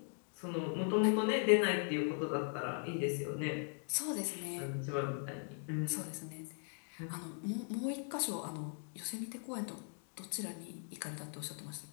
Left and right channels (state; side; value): silent; right; 51 dB below the other